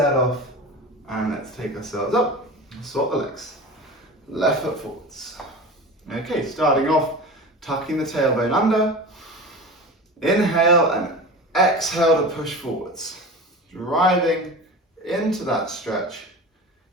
off and let's take ourselves up. Swap the legs. Left foot forwards. Okay, starting off, tucking the tailbone under. Inhale and exhale to push forwards. Driving into that stretch.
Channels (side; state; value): both; normal; correlation 0.32